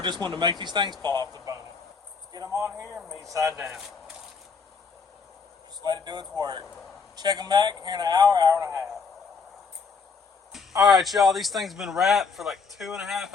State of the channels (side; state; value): right; quieter; 5.2 dB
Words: wanting to make these things fall off the bone. Let's get them on here, meat side down. Just let it do its work. Check them back here in an hour, hour and a half. All right, y'all, these things have been wrapped for like 2.5